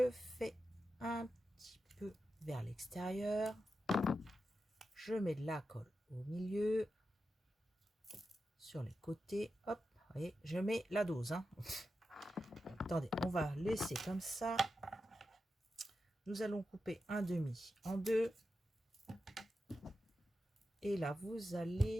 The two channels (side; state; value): both; normal; correlation 0.90